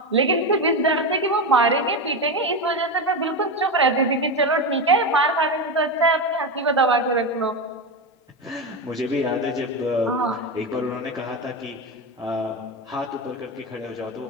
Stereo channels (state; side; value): normal; both; correlation 0.16